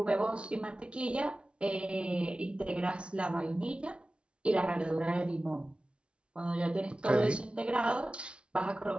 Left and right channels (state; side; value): late; left; 0.058 ms